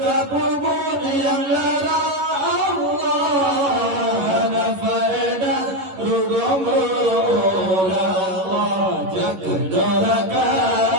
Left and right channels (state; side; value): late; left; 11 ms